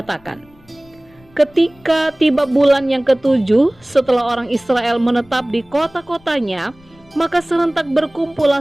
ketika tiba bulan yang ketujuh setelah orang Israel menetap di kota-kotanya, maka serentak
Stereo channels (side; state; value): left; noise; rumble, 28 dB below the sound